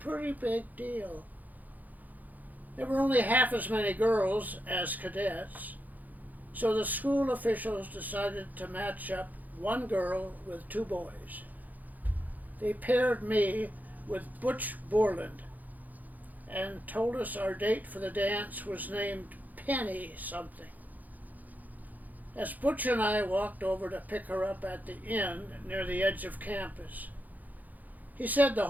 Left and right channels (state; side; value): late; left; 0.082 ms